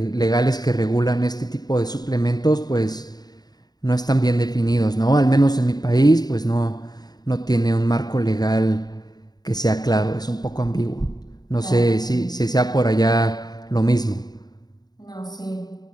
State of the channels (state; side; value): late; right; 0.19 ms